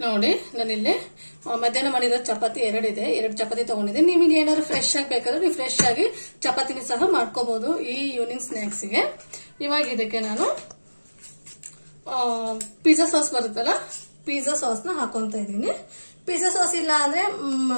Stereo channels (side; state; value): both; inverted; correlation -1.00